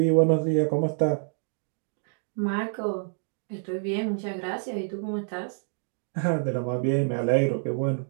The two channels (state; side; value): silent; left; digital silence